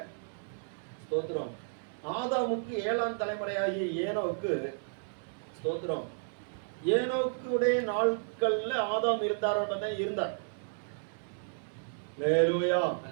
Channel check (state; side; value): silent; left; digital silence